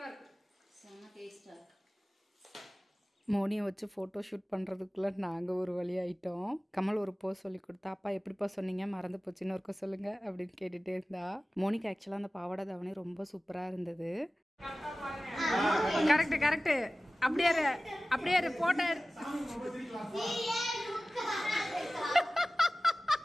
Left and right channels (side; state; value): both; normal; correlation 0.97